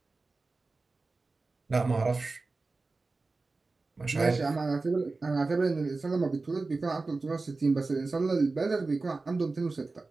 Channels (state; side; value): quieter; left; 3.7 dB